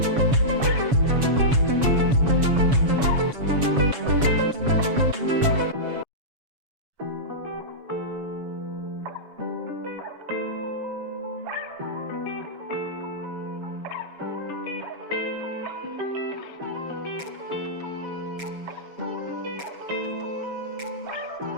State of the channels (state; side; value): late; left; 7.4 ms